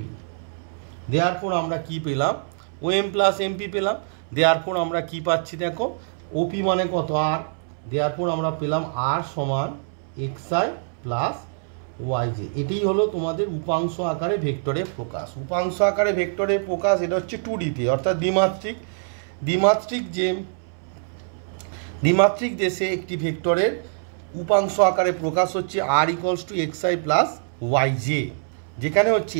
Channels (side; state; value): left; silent; 62 dB below the other